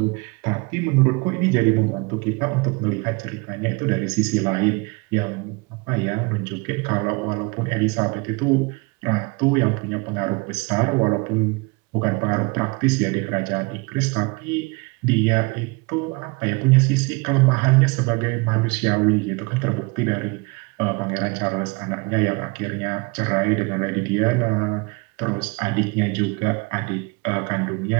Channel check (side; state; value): left; quieter; 27.9 dB